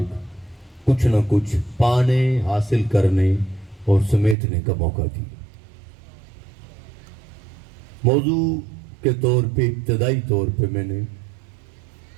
کچھ نہ کچھ پانے، حاصل کرنے اور سمیٹنے کا موقع دیا۔ موضوع کے طور پہ ابتدائی طور پہ میں نے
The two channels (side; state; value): left; drops out; at 4.4 s